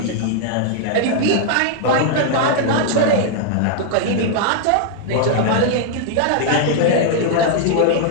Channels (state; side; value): different; both; correlation -0.01